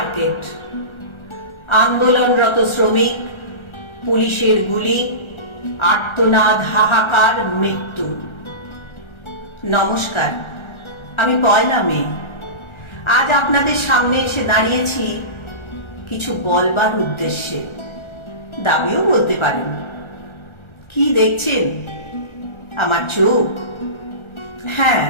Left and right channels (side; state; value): right; late; 1.4 ms